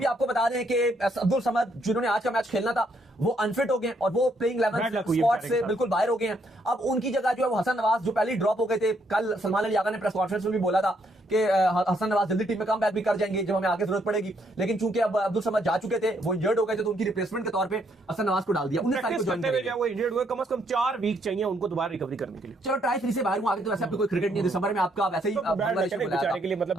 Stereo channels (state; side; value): normal; both; correlation 0.72